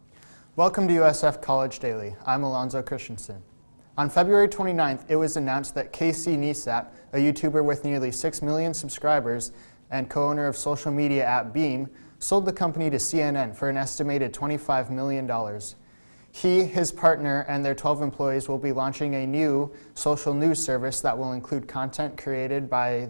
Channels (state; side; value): inverted; both; correlation -1.00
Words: Welcome to USF College Daily. I'm Alonzo Christensen. On February 29th, it was announced that Casey Neistat, a YouTuber with nearly 6 million subscribers and co-owner of social media app Beam, sold the company to CNN for an estimated $25 million. He, his partner, and their 12 employees will be launching a new social news service that will include content created by